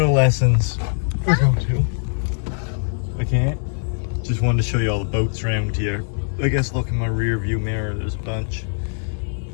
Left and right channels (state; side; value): silent; right; digital silence